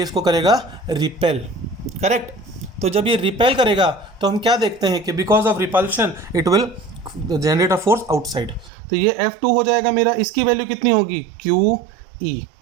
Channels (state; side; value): drops out; left; at 8.7 s